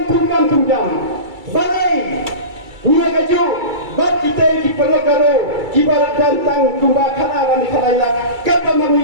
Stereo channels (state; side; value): late; left; 2.3 ms